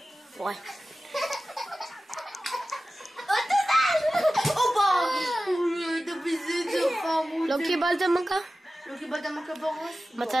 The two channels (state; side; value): normal; both; correlation 0.95